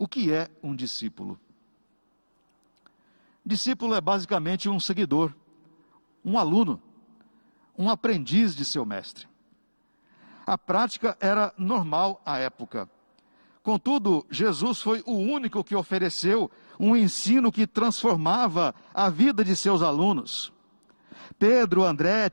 que é um discípulo? Discípulo é basicamente um seguidor, um aluno, um aprendiz de seu mestre. A prática era normal à época. Contudo, Jesus foi o único que ofereceu um ensino que transformava a vida de seus alunos. Pedro, André,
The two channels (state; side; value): inverted; both; correlation -1.00